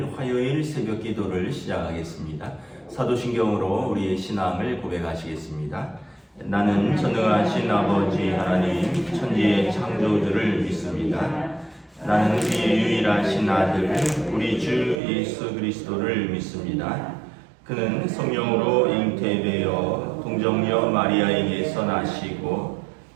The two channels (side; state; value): left; drops out; at 15.0 s